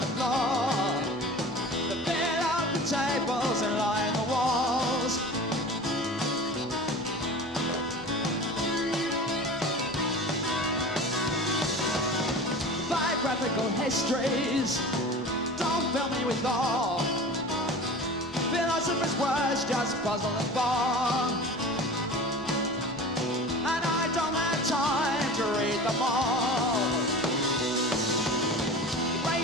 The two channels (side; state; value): both; normal; correlation 0.37